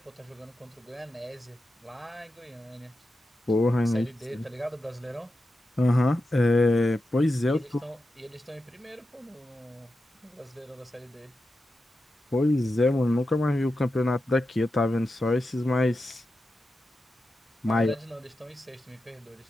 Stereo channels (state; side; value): normal; both; correlation 0.90